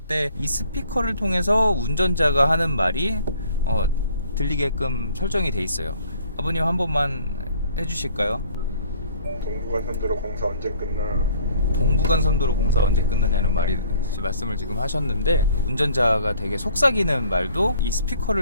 이 스피커를 통해서 운전자가 하는 말이 들리게끔 설정이 돼 있어요. 아버님 한 번만 해주실까요? 동부간선도로 공사 언제 끝나? 동부간선도로 공사 언제 끝나냐는 말씀을 지금 하셨는데, 운전자가 되게 속삭이는 말도 이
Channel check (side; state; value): both; inverted; correlation -0.57